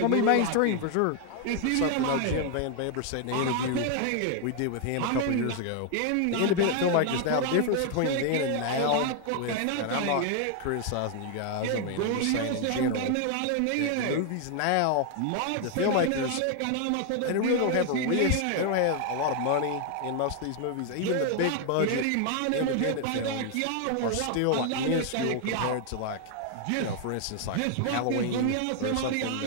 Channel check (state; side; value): different; both; correlation 0.00